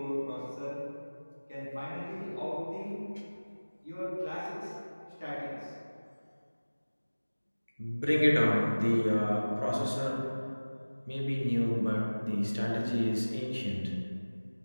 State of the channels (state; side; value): inverted; both; correlation -1.00